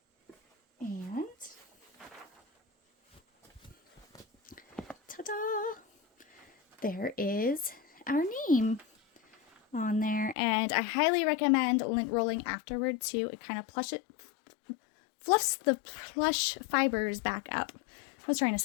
and ta-da! There is our name on there, and I highly recommend lint rolling afterward too. It kind of fluffs the plush fibers back up. I was trying to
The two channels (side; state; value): right; drops out; at 10.4 s